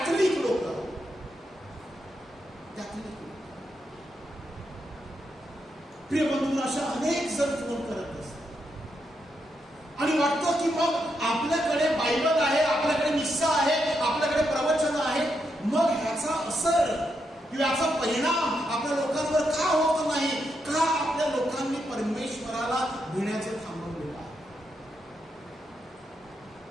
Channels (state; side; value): normal; both; correlation 0.82